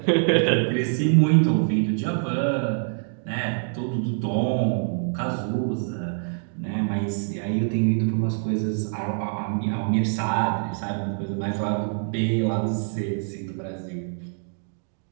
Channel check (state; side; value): silent; left; 62 dB below the other